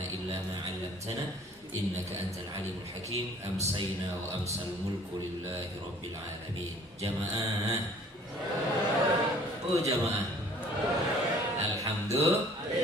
إلا ما علمتنا إنك أنت العليم الحكيم أمسينا وأمسى الملك لله رب العالمين جماعة jamaah Alhamdulillah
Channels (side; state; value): both; normal; correlation 0.54